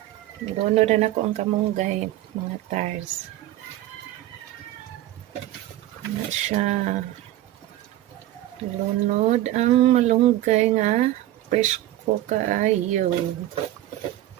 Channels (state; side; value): quieter; left; 14.5 dB